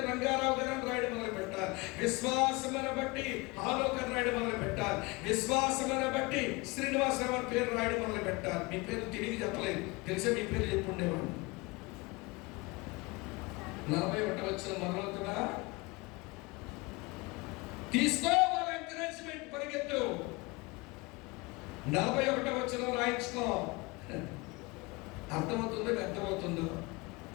రంగారావు గారు అని రాయడం మొదలు పెట్టాలి. విశ్వాసమును బట్టి హానోకు అని రాయడం మొదలు పెట్టాలి. విశ్వాసమును బట్టి శ్రీనివాసరావు అని పేరు రాయడం మొదలు పెట్టాలి. మీ పేరు తిరిగి చెప్పలేదు, తెలిసే మీ పేరు చెప్పుండేవాడు. 41వ వచనం మొదలవుతుందా? తీసుకో వాళ్ళ ఎంకరేజ్మెంట్, పరిగెత్తు. 41వ వచనం రాయించుకో. అర్థమవుతుందో అర్థమవుతుందో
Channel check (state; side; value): quieter; right; 25.1 dB